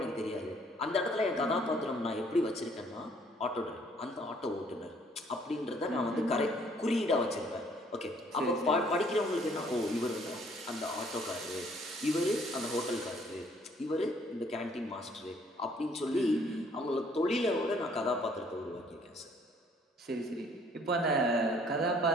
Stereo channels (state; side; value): normal; both; correlation 0.62